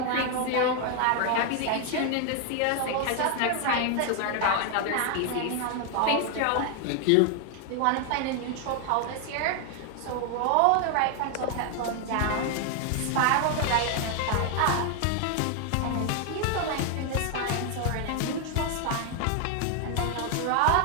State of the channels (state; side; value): different; both; correlation 0.00